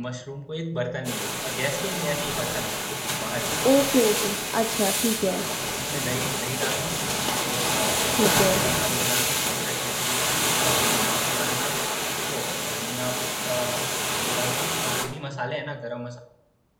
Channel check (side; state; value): both; identical; correlation 1.00